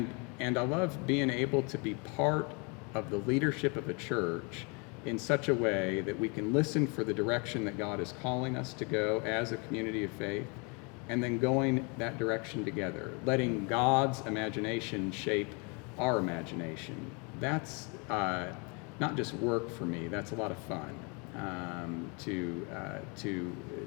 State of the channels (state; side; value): quieter; right; 32.4 dB